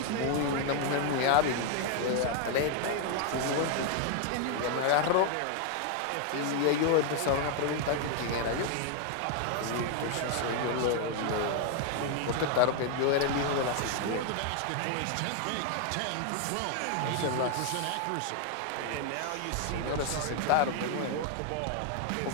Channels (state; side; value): different; both; correlation 0.00